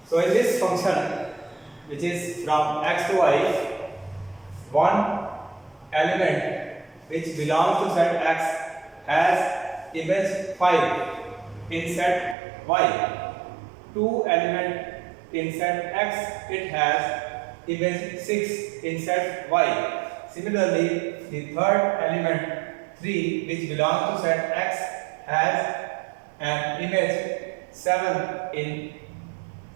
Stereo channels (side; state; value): left; drops out; at 12.4 s